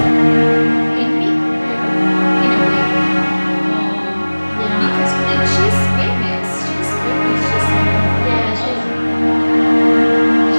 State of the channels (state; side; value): inverted; both; correlation -1.00